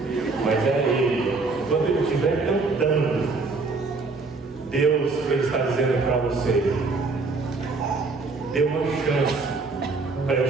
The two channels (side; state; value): left; quieter; 3.9 dB